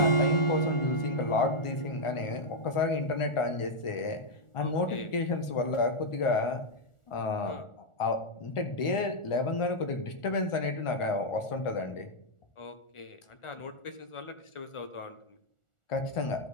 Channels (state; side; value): late; right; 1.4 ms